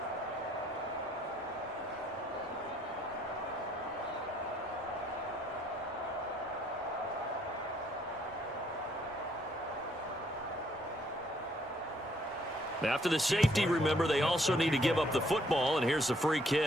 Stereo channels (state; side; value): normal; both; correlation 0.67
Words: After the safety, remember, they also need to give up the football, and here's the free